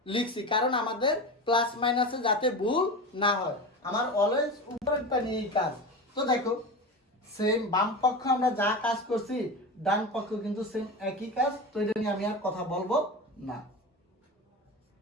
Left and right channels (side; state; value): both; normal; correlation 0.26